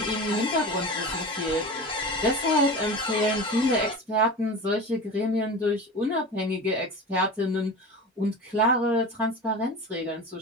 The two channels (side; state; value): both; normal; correlation 0.31